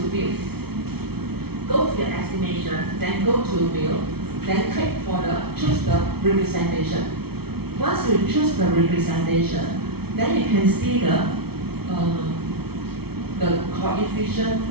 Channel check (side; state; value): left; late; 0.96 ms